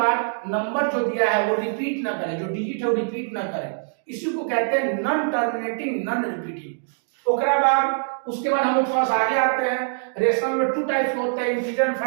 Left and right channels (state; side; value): silent; left; digital silence